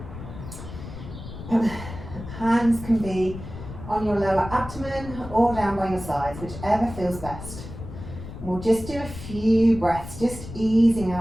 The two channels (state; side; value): noise; left; rumble, 11 dB below the sound